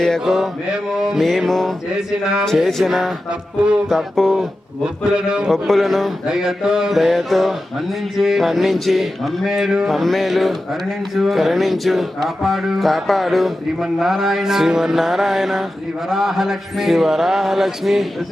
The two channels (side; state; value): both; normal; correlation 0.93